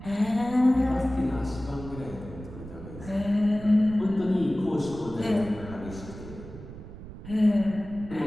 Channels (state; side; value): noise; right; rumble, 13 dB below the sound